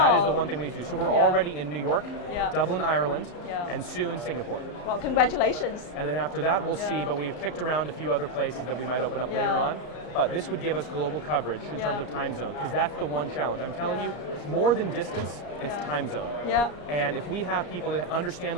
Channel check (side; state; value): right; late; 34 ms